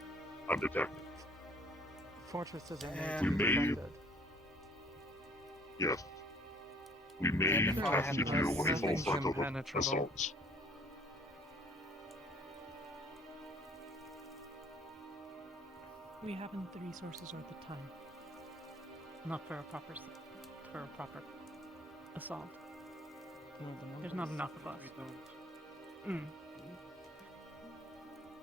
undetected. Fortress is We may, yes, we may have to do a full frontal assault. We haven't the resources or the time. Not for a proper assault. No, There's not enough of us.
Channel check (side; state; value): both; normal; correlation 0.56